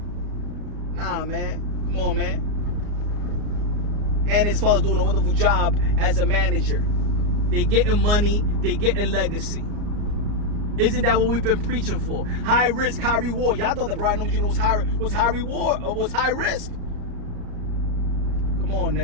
Nah, man. Come on, man. And his father's doing a wonderful job as a manager. They getting money, they getting legacy. Isn't that what we've been preaching for? High risk, high reward. Y'all thought that Brian Nomi Jr. was high reward or was high risk. Come on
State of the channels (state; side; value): late; left; 34 ms